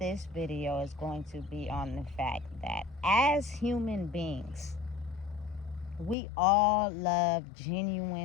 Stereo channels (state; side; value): drops out; right; at 6.2 s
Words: video is going to be on the fact that as human beings, we all love